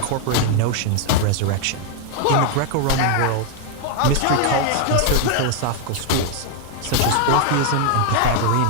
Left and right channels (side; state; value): both; different; correlation 0.00